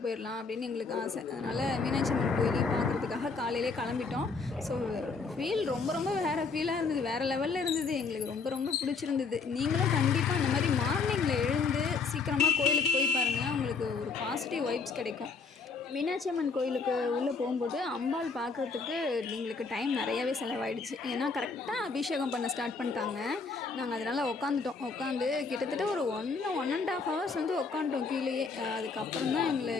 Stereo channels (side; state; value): right; quieter; 4.7 dB